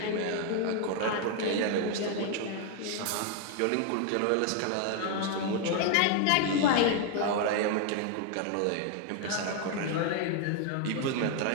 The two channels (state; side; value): different; both; correlation 0.00